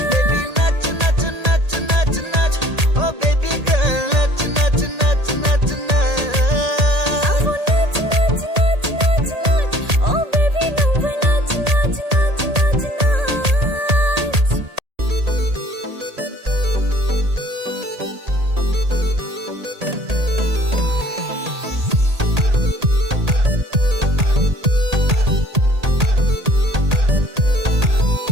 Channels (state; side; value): late; left; 1.8 ms